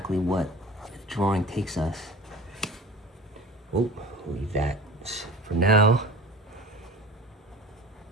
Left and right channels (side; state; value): both; normal; correlation 0.38